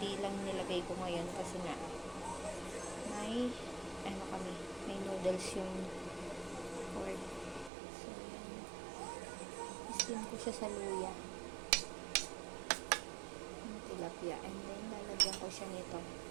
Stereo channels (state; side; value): drops out; left; at 7.7 s